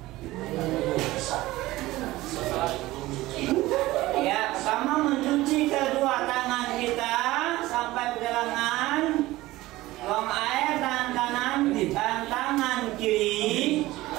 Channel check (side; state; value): left; quieter; 18.0 dB